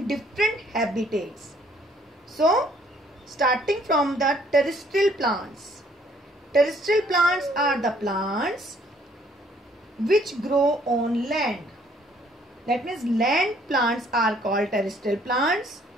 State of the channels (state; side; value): normal; both; correlation 0.63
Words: different habitats. So, starting from the terrestrial plants. Terrestrial plants are the plants which grow on land. That means land plants are called terrestrial plants.